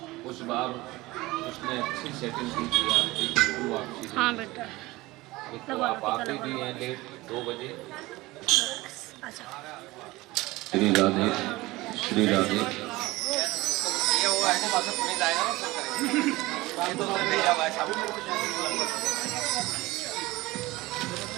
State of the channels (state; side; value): quieter; left; 20.1 dB